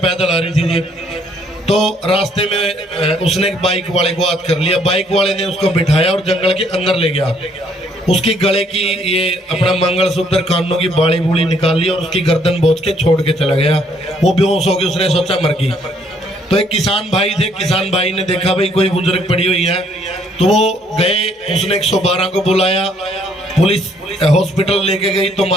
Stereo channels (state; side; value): normal; both; correlation 0.66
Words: आ रही थी जी। तो रास्ते में उसने एक बाइक वाले को याद कर लिया, बाइक वाले ने उसको बिठाया और जंगल के अंदर ले गया। उसकी गले की ये अपना मंगलसूत्र, कानों की बाड़ी बूड़ी निकाल ली और उसकी गर्दन बोझ के छोड़ के चला गया। वो बेहोश हो गई, उसने सोचा मर गई। तो एक किसान भाई थे, किसान भाई ने देखा भाई कोई बुजुर्ग पड़ी हुई है, तो वो गए, उसने 112 को बुलाया, पुलिस हॉस्पिटल लेके गई तो